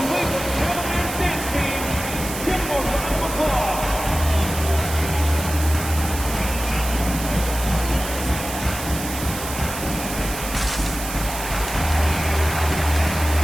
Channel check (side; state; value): right; noise; hiss, 8 dB below the sound